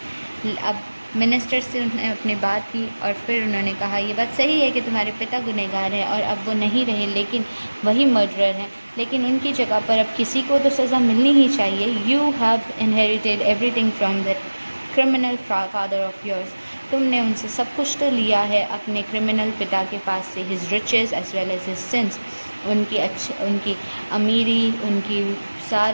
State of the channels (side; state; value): both; inverted; correlation -1.00